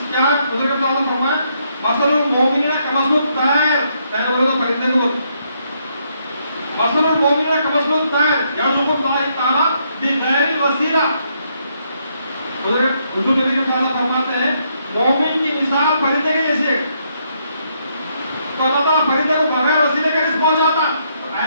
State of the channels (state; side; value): inverted; both; correlation -0.74